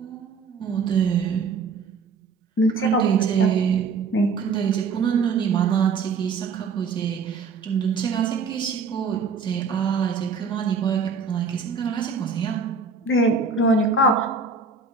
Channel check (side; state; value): left; quieter; 4.8 dB